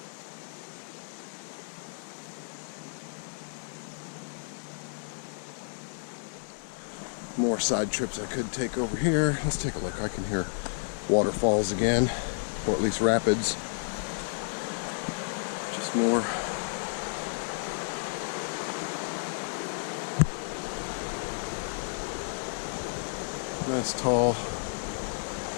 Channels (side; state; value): right; silent; 57 dB below the other